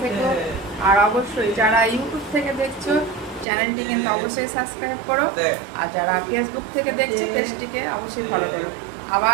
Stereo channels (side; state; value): left; drops out; at 3.5 s